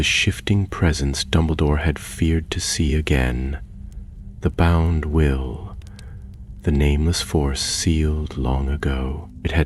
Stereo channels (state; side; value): identical; both; correlation 1.00